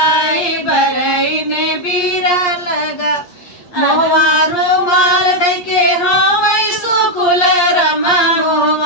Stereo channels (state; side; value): late; right; 8.6 ms